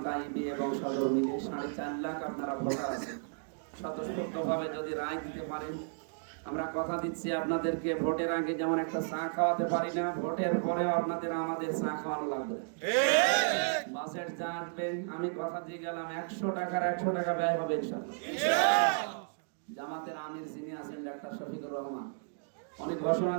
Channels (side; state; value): left; silent; digital silence